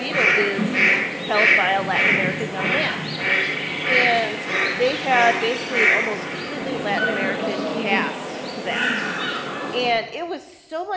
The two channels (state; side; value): identical; both; correlation 1.00